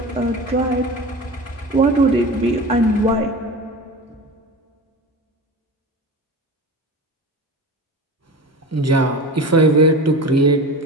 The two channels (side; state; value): both; normal; correlation 0.31